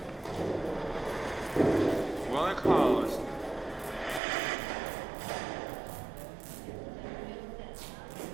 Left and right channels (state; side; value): drops out; left; at 4.2 s